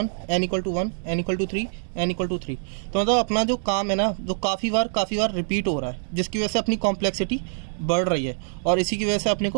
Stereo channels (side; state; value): left; silent; digital silence